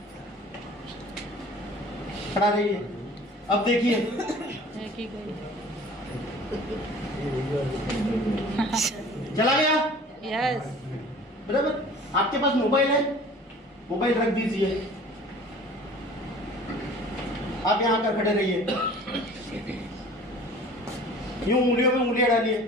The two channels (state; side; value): normal; both; correlation 0.46